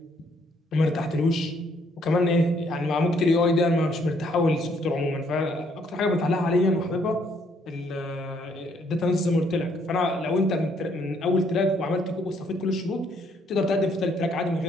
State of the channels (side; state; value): both; normal; correlation 0.68